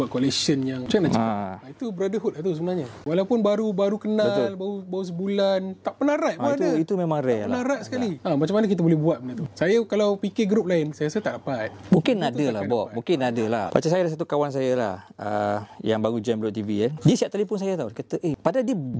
collection yang macam mana cakap? Itu brotherhood lah tu sebenarnya. Walaupun baru kenal, baru sebulan, tak pernah ride pun ada. Itu memang rare lah. Tak pernah ride sekali. Macam mana kita boleh buat benda tu? Saya kalau fikir grup lain, saya rasa tak dapat. Mungkin ada lah, Bob. Mungkin ada lah. Macam saya ada satu kawan saya lah, yang baru join Blok TV kan. Dia siap telefon saya tau. Dia kata, padahal dia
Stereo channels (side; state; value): both; identical; correlation 1.00